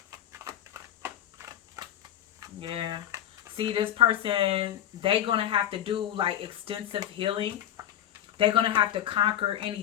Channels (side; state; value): right; quieter; 11.5 dB